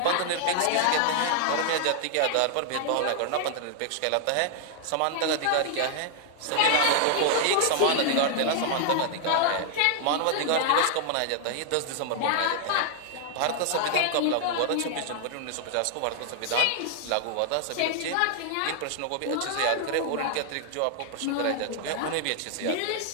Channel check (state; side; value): different; both; correlation 0.00